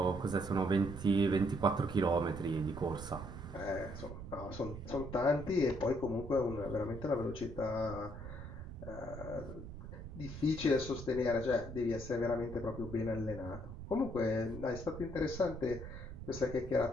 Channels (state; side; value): noise; right; rumble, 10 dB below the sound